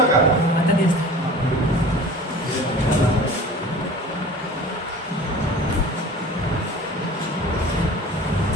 का? आता दिसतं.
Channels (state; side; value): normal; both; correlation 0.41